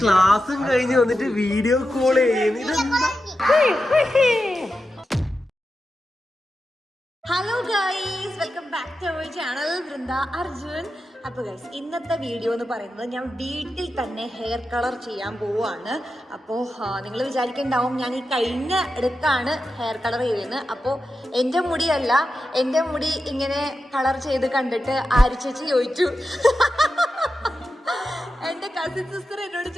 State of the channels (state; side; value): normal; both; correlation 0.90